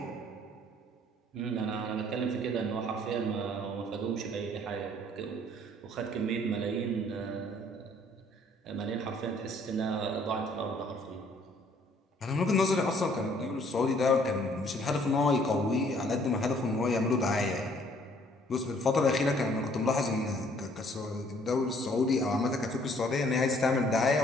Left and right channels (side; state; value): both; normal; correlation 0.61